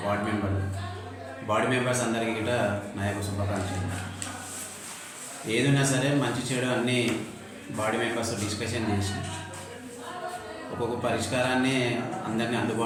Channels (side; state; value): both; identical; correlation 1.00